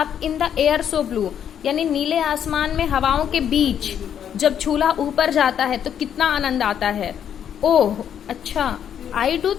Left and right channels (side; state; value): right; quieter; 9.1 dB